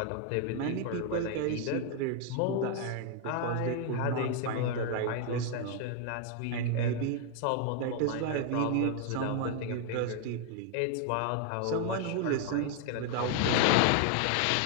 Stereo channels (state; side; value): different; both; correlation 0.00